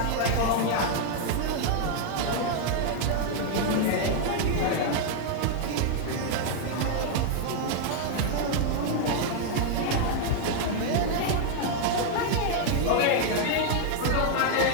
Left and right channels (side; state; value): both; different; correlation 0.00